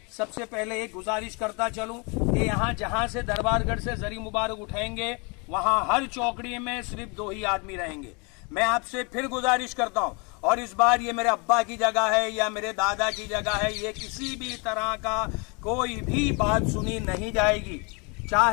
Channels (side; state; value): right; quieter; 31.8 dB